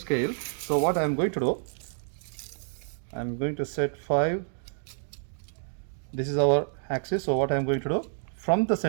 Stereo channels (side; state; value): left; silent; digital silence